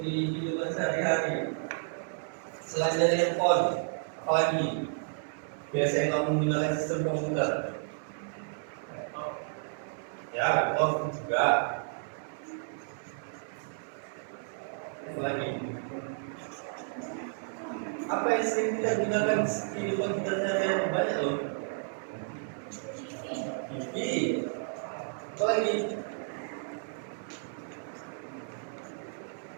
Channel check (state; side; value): silent; left; digital silence